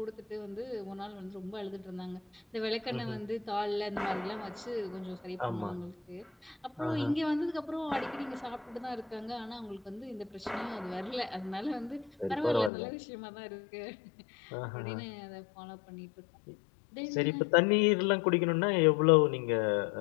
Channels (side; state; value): right; drops out; at 12.7 s